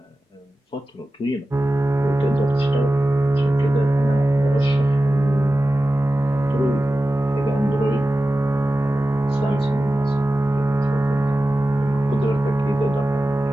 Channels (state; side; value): normal; both; correlation 0.94